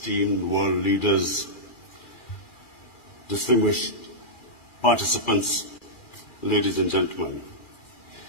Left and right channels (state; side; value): late; right; 2.4 ms